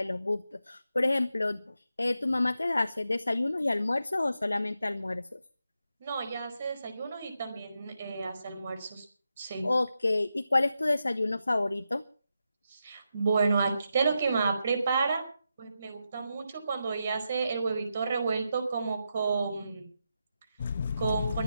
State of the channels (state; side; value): inverted; both; correlation -0.86